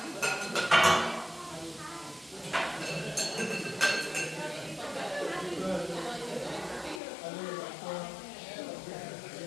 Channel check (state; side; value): drops out; right; at 7.0 s